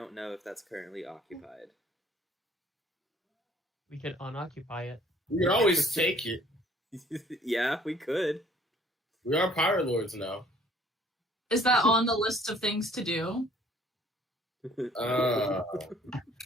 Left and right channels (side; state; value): both; normal; correlation 0.57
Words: know if that's currently occupied. We could unoccupy it. we can always take it. Yeah, we could. We are pirate lords now. Is that on the list of things to do?